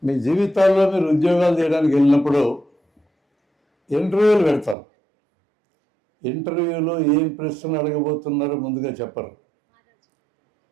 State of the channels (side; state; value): left; drops out; at 4.8 s